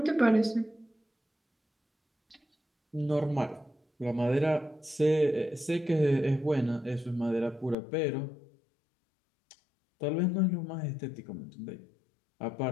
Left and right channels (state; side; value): drops out; right; at 7.8 s